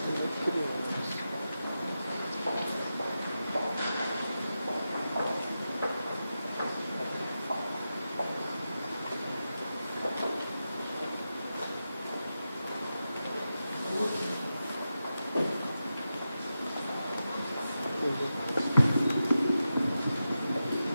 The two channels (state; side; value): inverted; both; correlation -0.91